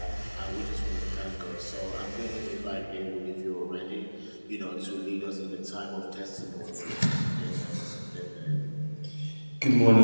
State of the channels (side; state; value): both; inverted; correlation -1.00